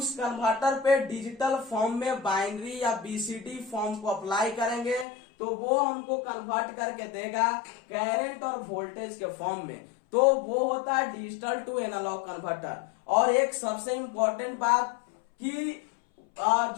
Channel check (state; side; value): drops out; right; at 5.1 s